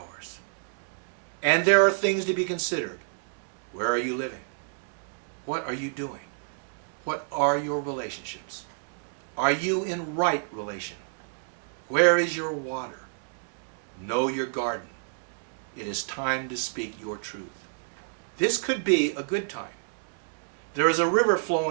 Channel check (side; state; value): left; silent; digital silence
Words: And there are things to be considered. Where are you living? What are you doing? What are your relationships? Are you in right relation? Where is your water? Know your garden. it is time to speak your truth. This could be a good time. There is a river